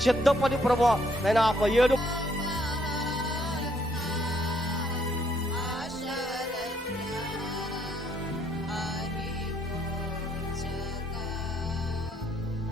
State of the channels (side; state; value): both; normal; correlation 0.69